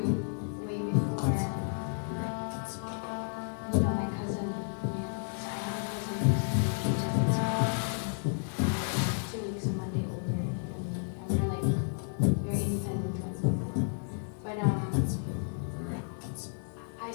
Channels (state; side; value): silent; right; 56 dB below the other